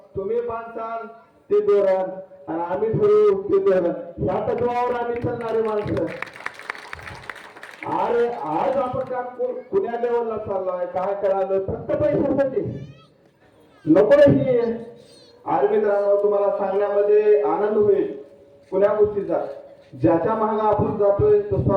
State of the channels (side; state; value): both; identical; correlation 1.00